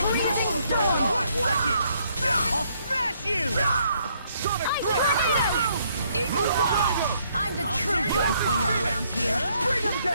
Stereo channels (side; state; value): both; inverted; correlation -0.70